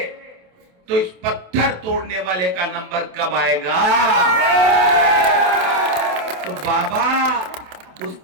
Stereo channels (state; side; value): late; left; 27 ms